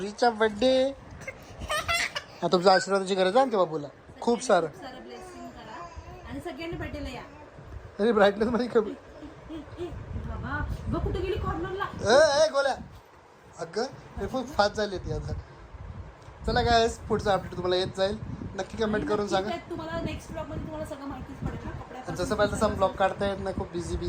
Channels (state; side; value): identical; both; correlation 1.00